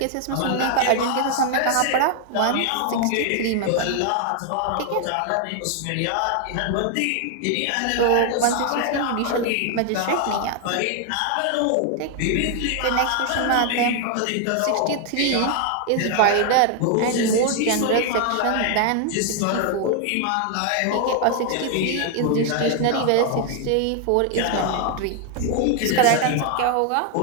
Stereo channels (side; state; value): both; different; correlation 0.00